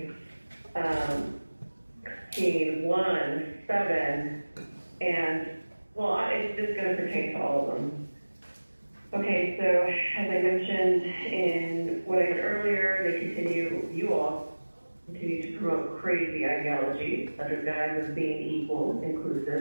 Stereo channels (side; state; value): both; inverted; correlation -1.00